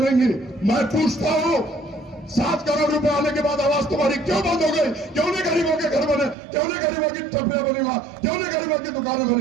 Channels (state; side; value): drops out; left; at 6.4 s